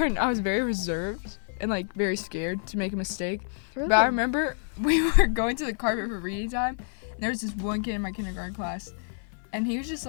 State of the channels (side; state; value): right; silent; 59 dB below the other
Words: I was very reserved and like very scared to make a mistake. Really? But I remember we were going to the carpet for reading time, and there was this one kid in my kindergarten class, and he was just